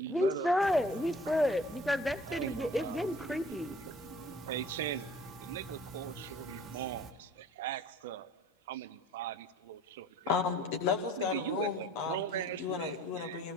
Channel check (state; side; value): normal; both; correlation 0.50